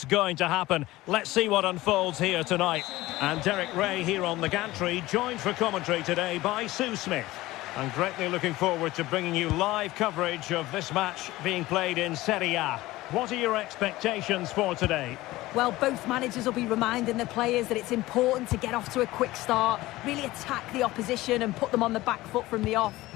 going to happen. Let's see what unfolds here tonight. And Derek Ray here on the gantry, joined for commentary today by Sue Smith. I'm greatly looking forward to bringing you live coverage of this match being played in Serie A. What are your expectations for today? Well, both managers will be reminding the players that it's important to get off to a quick start, really attack the opposition and put them on the back foot from the off.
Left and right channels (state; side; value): quieter; right; 18.0 dB